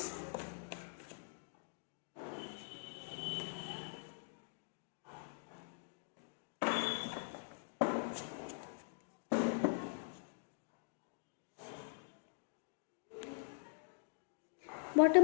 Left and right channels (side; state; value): right; silent; digital silence